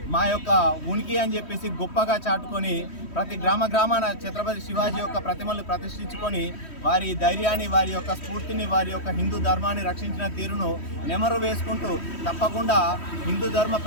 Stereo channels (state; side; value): late; right; 3.1 ms